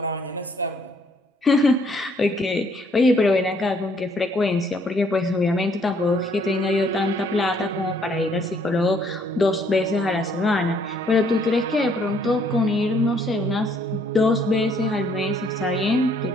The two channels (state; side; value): normal; both; correlation 0.65